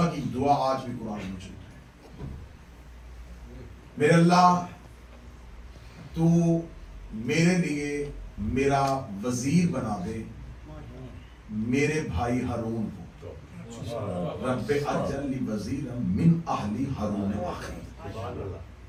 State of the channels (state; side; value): identical; both; correlation 1.00